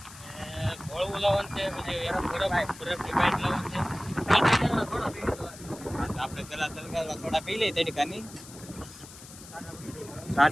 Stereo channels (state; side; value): noise; left; hiss, 17 dB below the sound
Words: ઘોળવું લાવવાનું છે, પછી બરફની પાઇપ લાવવાનું છે। આપણે પેલા તલગારવા થોડા પી લઈએ તડકાની,